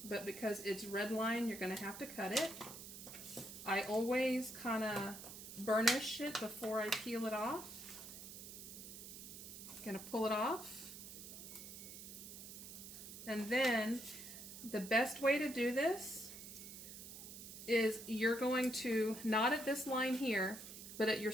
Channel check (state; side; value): noise; right; hiss, 11 dB below the sound